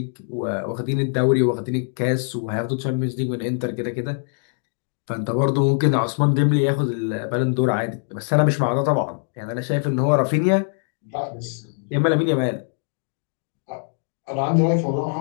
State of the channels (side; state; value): right; silent; digital silence